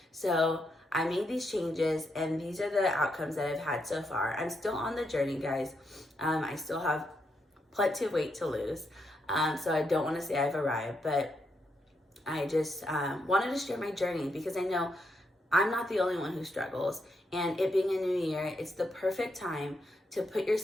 So I made these changes, and these are the outcomes that I've had so far. I'm still on the journey, guys. I still have plenty of weight to lose. So I don't want to say I've arrived, but I just wanted to share my journey because I know I'm not the only one who struggles. And it being a new year, it's the perfect time to put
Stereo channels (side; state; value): both; normal; correlation 0.80